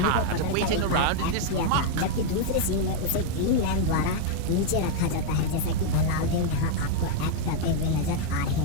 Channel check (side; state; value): both; different; correlation 0.00